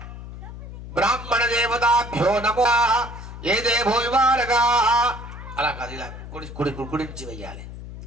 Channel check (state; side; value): noise; left; hum, 12 dB below the sound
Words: బ్రాహ్మణ దేవతాభ్యో నమో. ఏ దేవో వివారగా అలా కాదు, ఇలా కుడి నుంచి వెయ్యాలి.